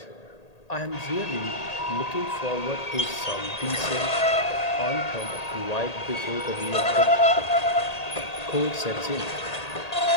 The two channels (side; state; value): right; late; 1.8 ms